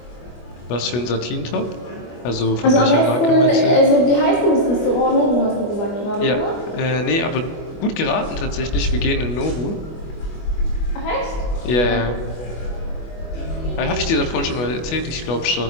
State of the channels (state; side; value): late; right; 24 ms